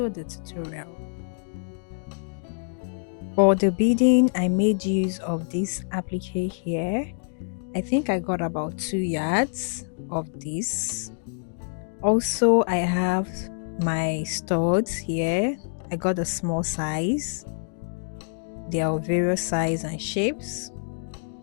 the tutorial. For the beading, I made use of this applique here. I think I got about 2 yards of this. Also, I have my studs here. I got a small size. They are of various size and shapes.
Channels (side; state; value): right; silent; digital silence